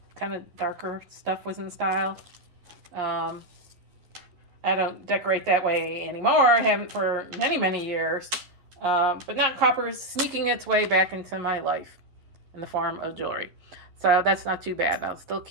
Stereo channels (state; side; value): late; left; 11 ms